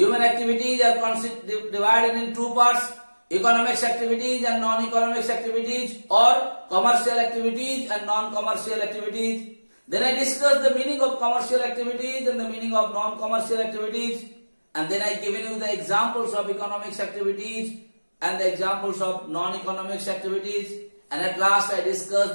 activities are divided in two parts: economics activities and non-economics activities, or commercial activities and non-commercial activities. Then I discussed the meaning of commercial activities and the meaning of non-commercial activities. And then I given you the examples of economics activities and the examples of non-economics activities. And at last I discussed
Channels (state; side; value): inverted; both; correlation -1.00